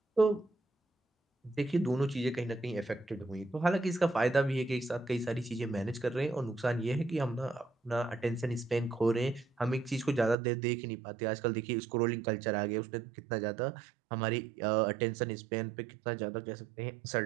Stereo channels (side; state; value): left; drops out; at 10.4 s